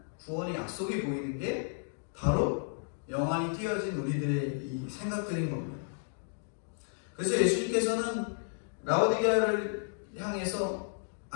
구원의 약속이 보이는 게 바로 영안이 띄어진 우리들의 이 생각들인 겁니다. 그래서 예수님께서는 라오디게아를 향해서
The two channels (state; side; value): silent; right; digital silence